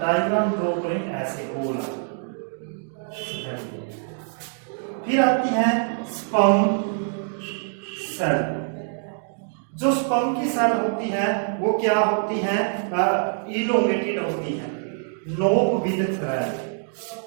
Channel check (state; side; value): silent; left; 62 dB below the other